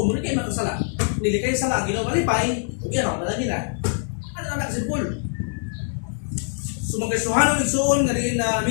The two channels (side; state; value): right; silent; digital silence